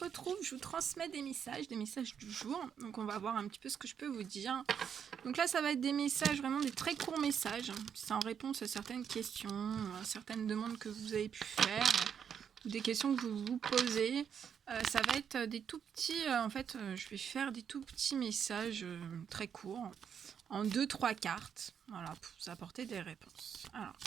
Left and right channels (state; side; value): quieter; left; 7.8 dB